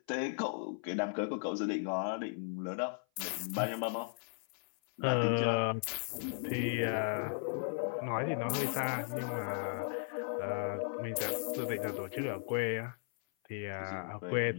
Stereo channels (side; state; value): right; silent; 54 dB below the other